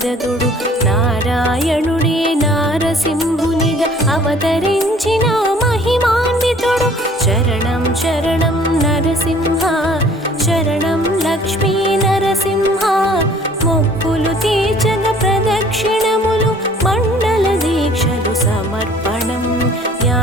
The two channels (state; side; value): normal; both; correlation 0.54